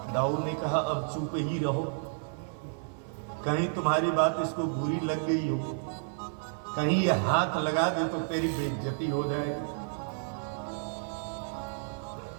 दाऊद ने कहा अब चुप ही रहो, कहीं तुम्हारी बात इसको बुरी लग गई हो, कहीं ये हाथ लगा दे तो तेरी बेइज्जती हो जाएगी।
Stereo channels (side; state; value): left; silent; 57 dB below the other